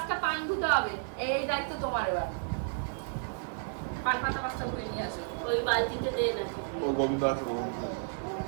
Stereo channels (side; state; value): left; silent; digital silence